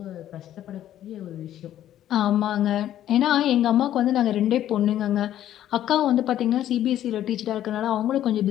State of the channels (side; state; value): right; quieter; 11.9 dB